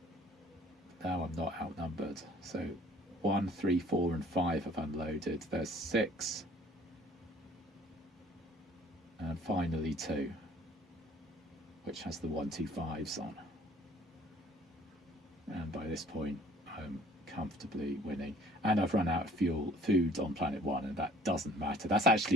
I'm not outnumbered. So 1, 3, 4 and 5 have unloaded. There's 6, and finally 2, which has the 125s on. And by this point I'm comfortably winning, and I've run out of food on planet 1, and that doesn't matter. That's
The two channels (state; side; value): normal; both; correlation 0.55